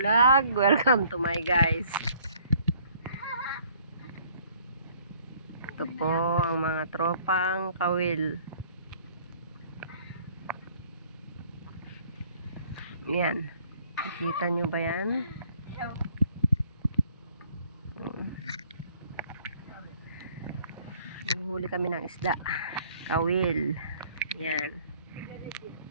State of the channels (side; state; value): both; inverted; correlation -0.59